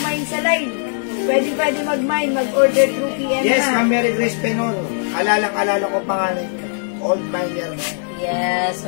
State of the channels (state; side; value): silent; right; 62 dB below the other